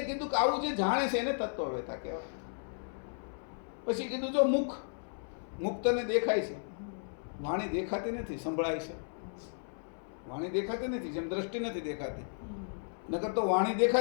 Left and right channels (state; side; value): silent; right; 55 dB below the other